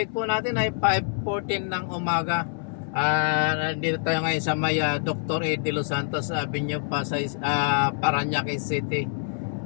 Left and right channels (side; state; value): right; silent; 61 dB below the other